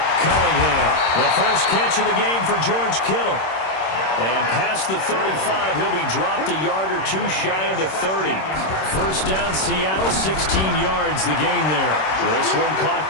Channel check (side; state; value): right; late; 26 ms